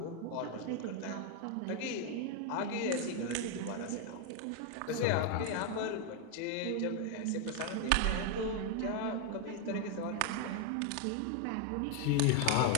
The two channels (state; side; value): different; both; correlation 0.00